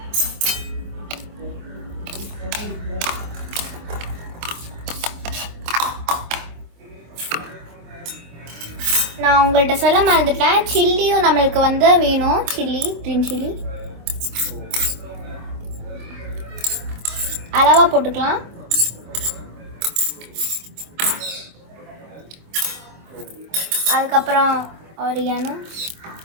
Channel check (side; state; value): left; late; 25 ms